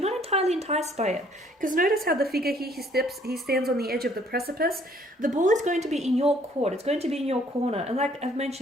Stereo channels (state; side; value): normal; both; correlation 0.62